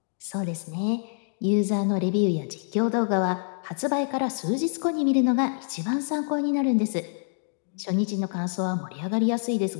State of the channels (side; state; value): right; silent; digital silence